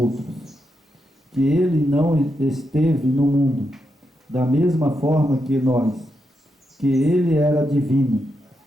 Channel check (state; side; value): normal; both; correlation 0.84